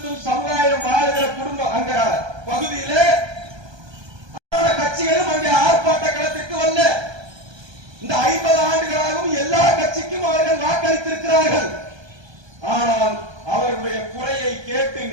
சமுதாயம் வாழுகிற குடும்பம் அங்க பகுதியிலே கட்சிகளும் அங்கே ஆர்ப்பாட்ட களத்திற்கு வரல. இந்த 50 ஆண்டுகளாகவும் எல்லா கட்சிக்கும் அவர்கள் வாக்களித்திருக்கிறார்கள். ஆனால் அவர்களுடைய குறையை கேட்டு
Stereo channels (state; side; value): late; left; 1.2 ms